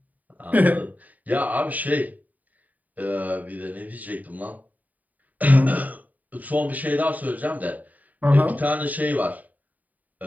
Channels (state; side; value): late; left; 0.077 ms